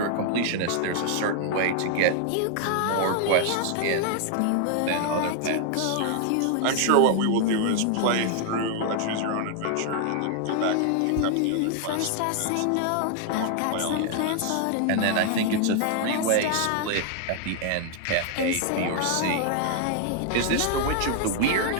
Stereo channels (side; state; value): both; different; correlation 0.00